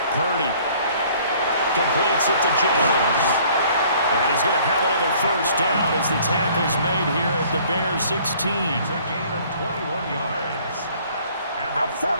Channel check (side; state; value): both; inverted; correlation -0.56